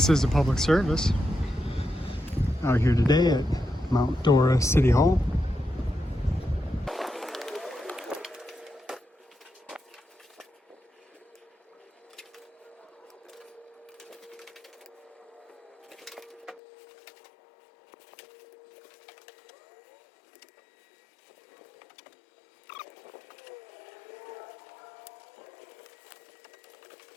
is a public service out here today at Mount Dora City Hall.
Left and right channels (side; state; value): right; drops out; at 16.6 s